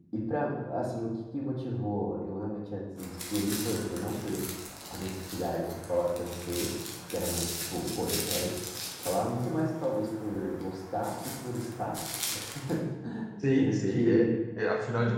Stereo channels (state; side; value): identical; both; correlation 1.00